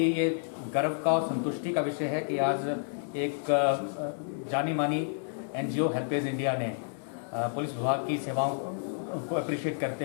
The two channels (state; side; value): silent; right; digital silence